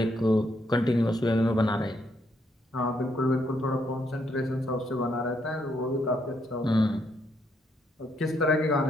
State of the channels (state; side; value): normal; both; correlation 0.75